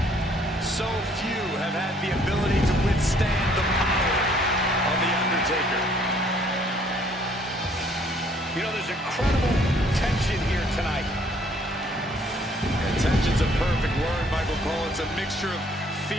So few have had the ability to withstand the power of The Undertaker. You know, there's incredible tension here tonight. And tension's a perfect word, Michael Cole. It's a mixture of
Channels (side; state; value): both; normal; correlation 0.62